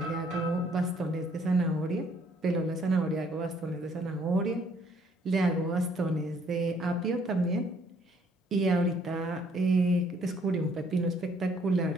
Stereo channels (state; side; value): normal; both; correlation 0.64